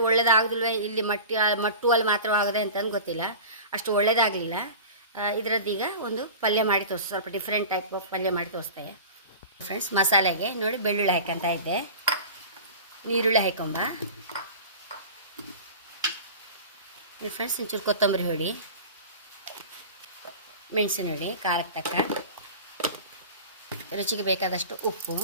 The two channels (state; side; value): inverted; both; correlation -0.36